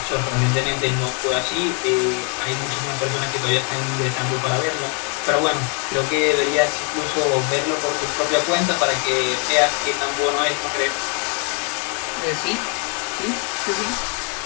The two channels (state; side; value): quieter; right; 36.5 dB